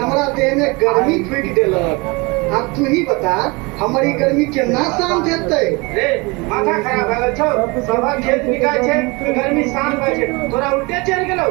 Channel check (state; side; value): quieter; left; 26.6 dB